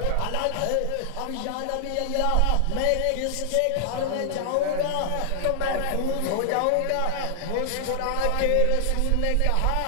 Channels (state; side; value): different; both; correlation 0.00